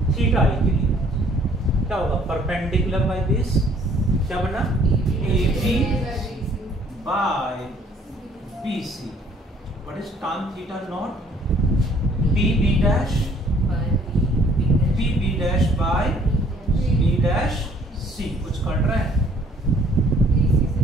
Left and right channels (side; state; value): both; normal; correlation 0.59